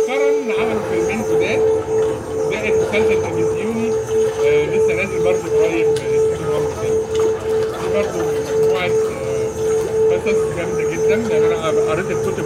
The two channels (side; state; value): both; identical; correlation 1.00